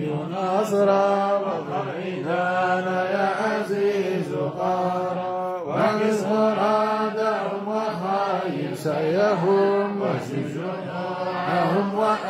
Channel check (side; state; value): both; identical; correlation 1.00